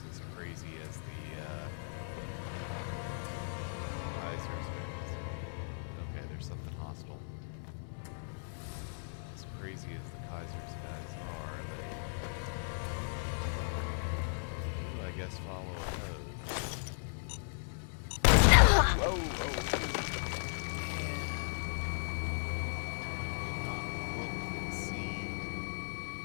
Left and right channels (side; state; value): right; silent; 54 dB below the other